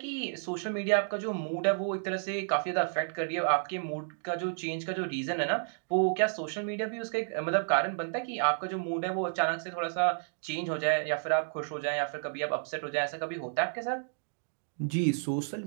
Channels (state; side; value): silent; left; digital silence